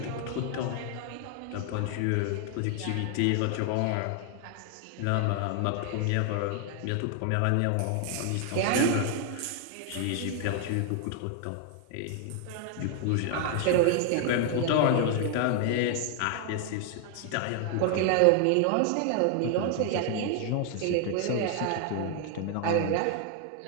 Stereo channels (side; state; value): both; different; correlation 0.00